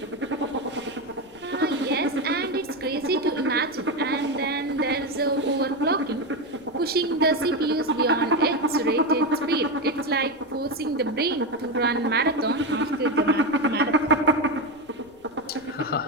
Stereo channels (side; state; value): left; noise; rumble, 29 dB below the sound